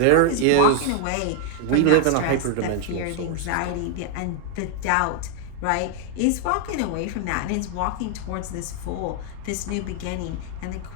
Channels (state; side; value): different; both; correlation 0.00